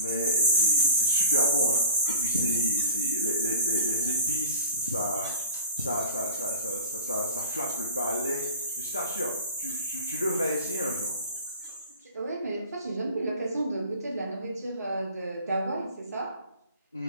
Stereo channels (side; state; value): both; inverted; correlation -0.40